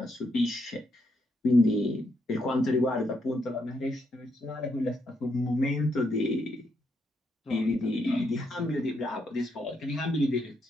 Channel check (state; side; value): normal; both; correlation 0.78